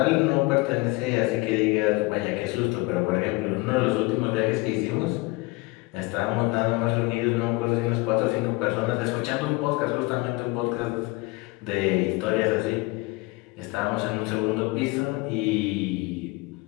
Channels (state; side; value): quieter; right; 23.6 dB